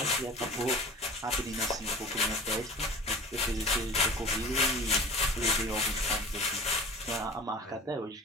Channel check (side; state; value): both; normal; correlation 0.40